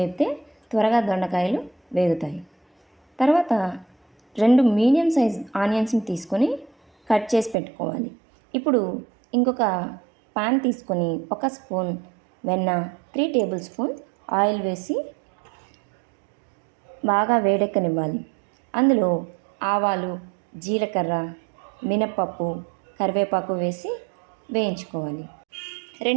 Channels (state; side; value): drops out; left; at 7.6 s